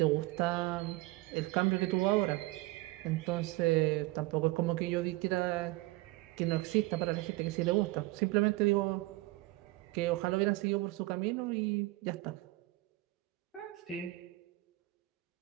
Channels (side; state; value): left; quieter; 20.7 dB